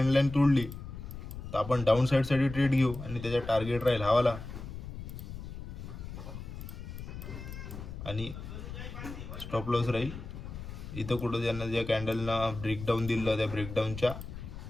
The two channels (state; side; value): noise; left; rumble, 10 dB below the sound